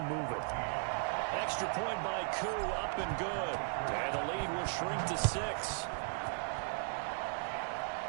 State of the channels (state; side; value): silent; left; 53 dB below the other